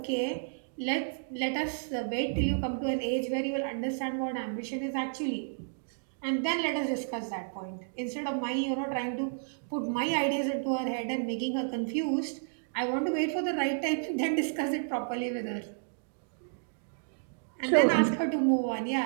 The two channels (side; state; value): left; silent; digital silence